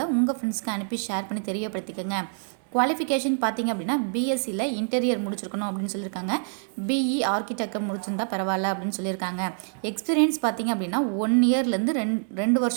உங்கள் ஃப்ரெண்ட்ஸ்க்கு அனுப்பி ஷேர் பண்ணி தெரியப்படுத்திக்கோங்க. குவாலிஃபிகேஷன் பார்த்திங்க அப்படின்னா பிஎஸ்சியில் இன்டீரியர் முடிச்சிருக்கணும் அப்படின்னு சொல்லியிருக்காங்க. பிஇ ஆர்கிடெக்டர் முடிச்சிருந்தா பரவாயில்ல அப்படின்னு சொல்லியிருக்காங்க. எக்ஸ்பீரியன்ஸ் பார்த்திங்க அப்படின்னா 1 இயர்லேருந்து ரெண்டு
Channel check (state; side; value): silent; left; digital silence